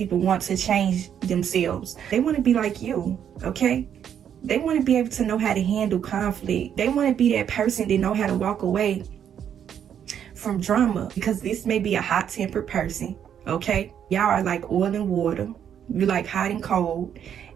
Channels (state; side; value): quieter; left; 8.9 dB